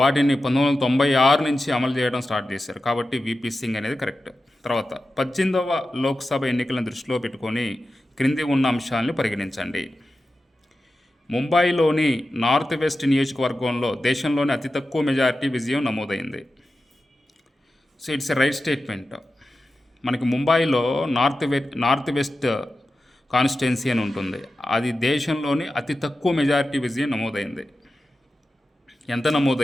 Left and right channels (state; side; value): normal; both; correlation 0.92